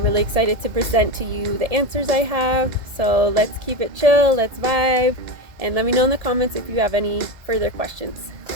really excited to present to you the answers I have. So let's keep it chill, let's vibe, and let me know in the comments if you have any further questions.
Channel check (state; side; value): late; left; 1.7 ms